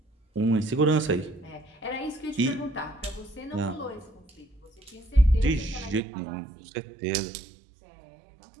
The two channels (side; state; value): left; drops out; at 6.0 s